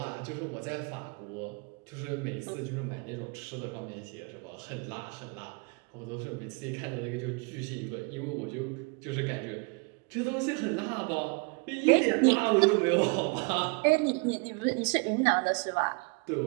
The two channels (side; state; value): left; quieter; 31.9 dB